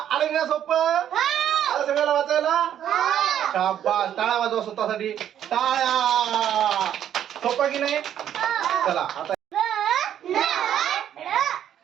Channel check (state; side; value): quieter; left; 10.2 dB